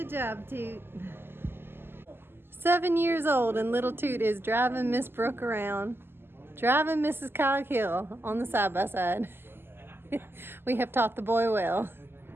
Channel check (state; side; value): late; left; 0.11 ms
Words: job, Toot. 7 years old and little Toot is driving Miss Brooke around. Driving Mrs. Coghill on the side-by-side. We have taught the boy well.